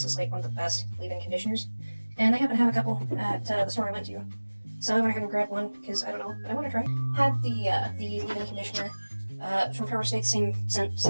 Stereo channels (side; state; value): both; inverted; correlation -1.00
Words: is like one of the best leave-in conditioners, and they happen to have a couple at the store I went to. So I went ahead and grabbed one because I don't know, but I want to try. Had the leave-in conditioner from Power State, same scent,